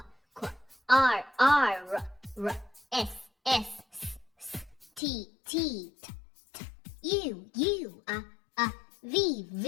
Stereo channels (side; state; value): right; drops out; at 5.0 s